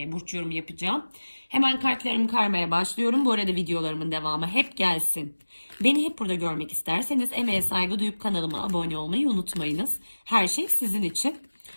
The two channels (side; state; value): both; inverted; correlation -1.00